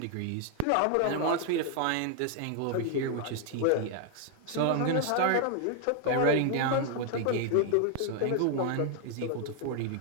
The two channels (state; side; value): different; both; correlation 0.00